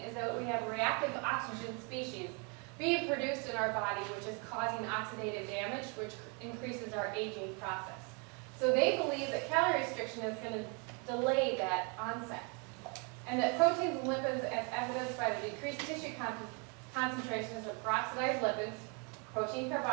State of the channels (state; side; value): quieter; left; 34.5 dB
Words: that we have reactive oxygen species being produced in our body, which is causing oxidative damage, which increases our aging process. So they believe that calorie restriction is going to delay that onset, and that proteins and lipids, as evidenced by the decreased tissue concentrations of peroxidized lipids, protein